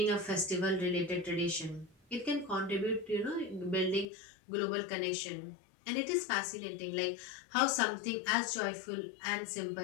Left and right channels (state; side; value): drops out; right; at 4.0 s